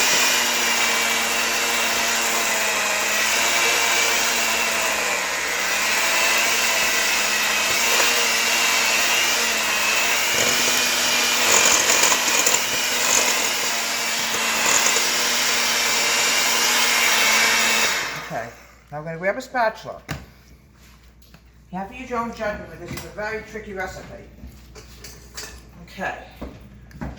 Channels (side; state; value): both; identical; correlation 1.00